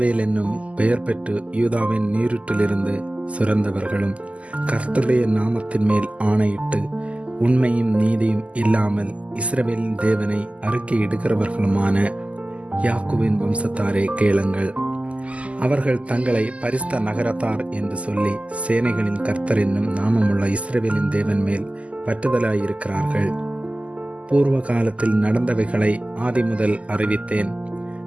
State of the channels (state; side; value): late; left; 0.064 ms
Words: என்னும் பெயர் பெற்று யூதாவின் நீருற்றிலிருந்து சுரந்தவர்களும் கர்த்தருடைய நாமத்தின் மேல் ஆணையிட்டு உண்மையும் நீதியும் இல்லாமல் இஸ்ரவேலின் தேவனை அறிக்கையிடுகிறவர்களுமான யாக்கோபின் வம்சத்தாரே கேளுங்கள். அவர்கள் தங்களை பரிசுத்த நகரத்தார் என்று சொல்லி சேனைகளின் கர்த்தர் என்னும் நாமமுள்ள இஸ்ரவேலின் தேவன் மேல் பற்றுதலாயிருக்கிறார்கள். பூர்வ காலத்தில் நடந்தவைகளை ஆதி முதல் அறிவித்தேன்.